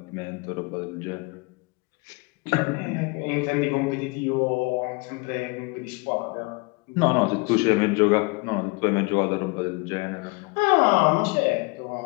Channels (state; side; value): quieter; right; 27.8 dB